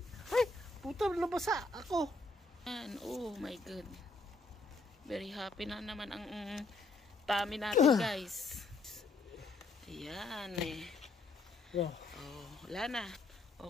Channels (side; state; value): right; quieter; 3.2 dB